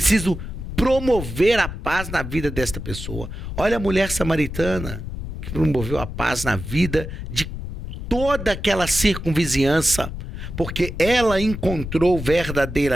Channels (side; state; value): left; noise; rumble, 7 dB below the sound